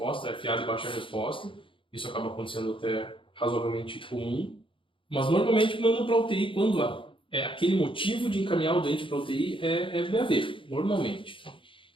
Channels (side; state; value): right; late; 0.25 ms